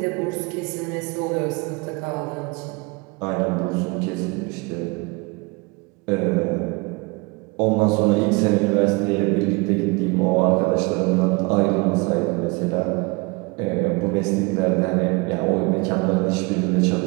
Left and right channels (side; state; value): left; quieter; 27.6 dB